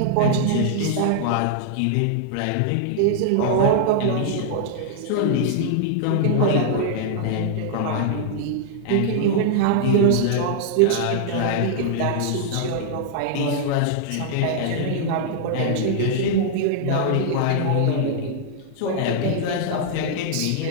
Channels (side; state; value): both; different; correlation -0.01